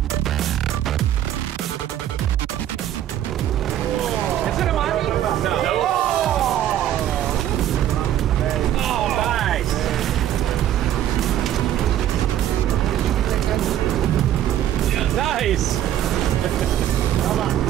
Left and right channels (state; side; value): quieter; left; 11.7 dB